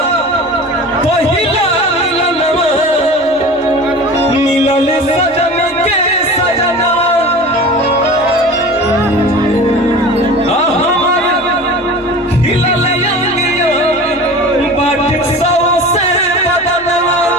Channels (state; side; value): normal; both; correlation 0.37